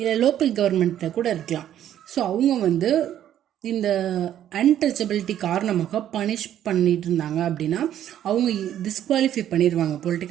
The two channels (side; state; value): left; quieter; 11.1 dB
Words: லோக்கல் கவர்மெண்ட்டில் கூட இருக்கலாம். ஸோ அவங்க வந்து இந்த அன்டச்சபிலிட்டி காரணமாக பனிஷ் பண்ணிட்டு இருந்தாங்க அப்படின்னா அவங்க டிஸ்குவாலிஃபை பண்ணிடுவாங்க